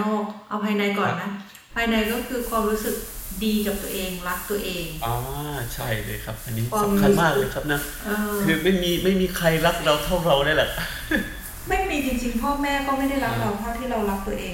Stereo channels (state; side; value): identical; both; correlation 1.00